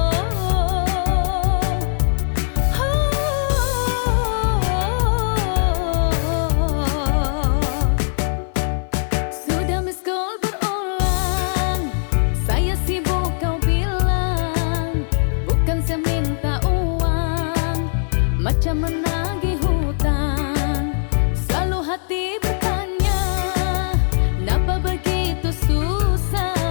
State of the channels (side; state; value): right; silent; digital silence